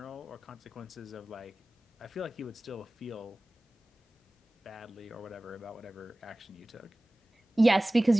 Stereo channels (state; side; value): normal; both; correlation 0.98